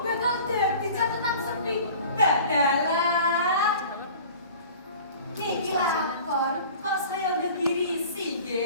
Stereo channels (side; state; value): both; inverted; correlation -0.43